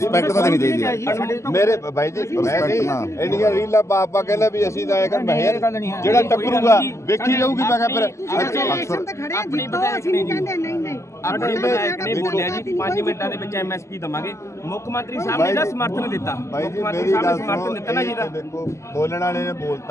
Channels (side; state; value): right; late; 0.14 ms